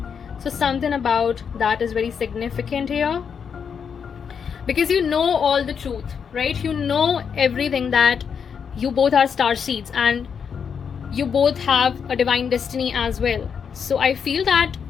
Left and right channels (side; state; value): right; quieter; 6.8 dB